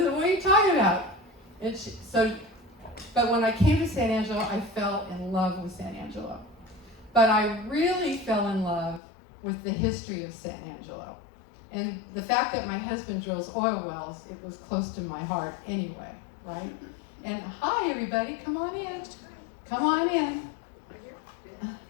what are you talking about? And but when I came to San Angelo, I fell in love with San Angelo. But I really fell in love with the history of San Angelo. And the fact that my husband drills oil wells, it was close to my heart anyway, right? And hi, everybody, come on in. Come on in.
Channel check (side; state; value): right; drops out; at 9.0 s